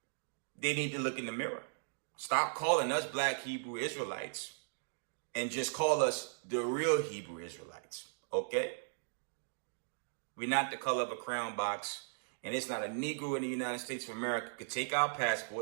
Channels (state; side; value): silent; left; digital silence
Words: they need to look in the mirror. Stop calling us black Hebrew Israelites and just call us the real Hebrew Israelites, okay? We're not the color of a crown box, and it's not a Negro in the United States of America could take our